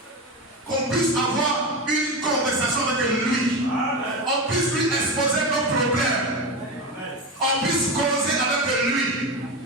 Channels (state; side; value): normal; both; correlation 0.20